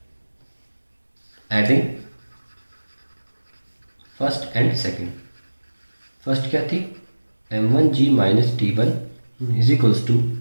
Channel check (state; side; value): inverted; both; correlation -1.00